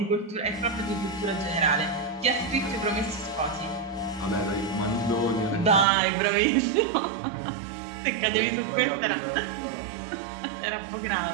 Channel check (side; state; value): left; drops out; at 5.9 s